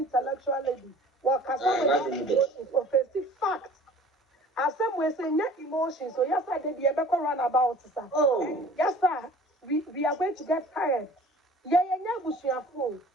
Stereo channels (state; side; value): normal; both; correlation 0.47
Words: lady. What can is offensive fact. As some way say net emotions. So yes, I did the ever run about, sir. Oh. Yes, sir. We are going to get tired. Yeah, Busia fool.